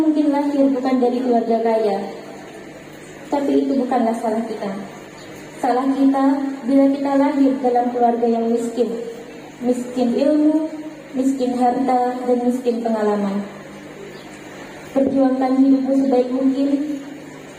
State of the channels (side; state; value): both; identical; correlation 1.00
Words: lahir bukan dari keluarga kaya, tapi itu bukanlah salah kita. Salah kita bila kita lahir dalam keluarga yang miskin. Miskin ilmu, miskin harta, dan miskin pengalaman. Perjuangkan hidupmu sebaik mungkin.